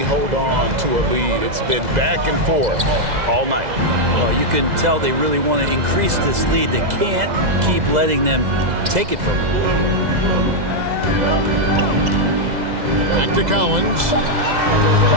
hold on to a lead. It's been back and forth all night. Well, you can tell they really want to increase this lead. They can't keep letting them take it from them. Back to Collins.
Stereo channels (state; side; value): late; left; 2.0 ms